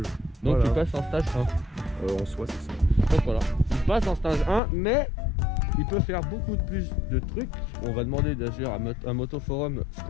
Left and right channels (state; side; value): drops out; right; at 4.6 s